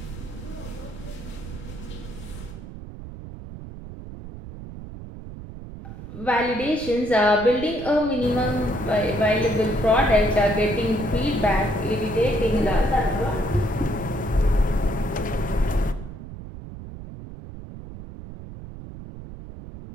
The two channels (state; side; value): noise; right; rumble, 12 dB below the sound